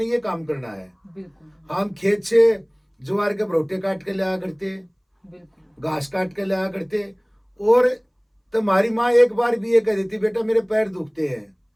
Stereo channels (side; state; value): both; identical; correlation 1.00